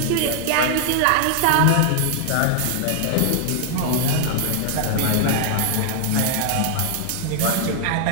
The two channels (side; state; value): both; different; correlation 0.00